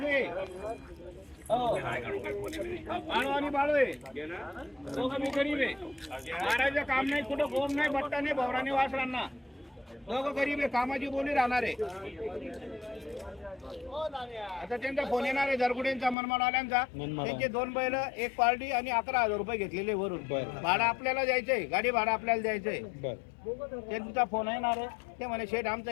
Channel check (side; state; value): right; drops out; at 16.2 s